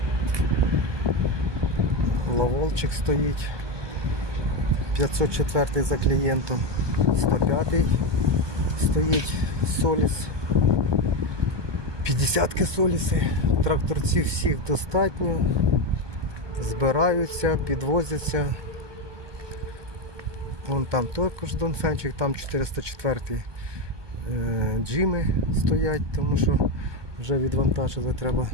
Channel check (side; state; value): left; late; 1.2 ms